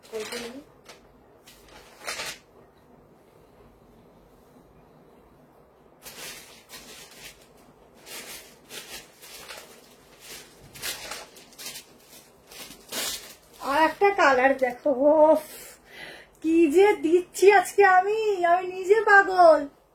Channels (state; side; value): identical; both; correlation 1.00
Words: কল করে নিই। আর একটা কালার দেখো, ওফ কি যে দিচ্ছি আজকে আমি নিজে পাগল।